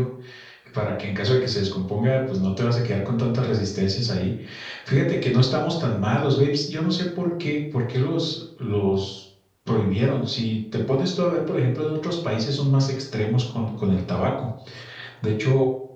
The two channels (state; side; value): identical; both; correlation 1.00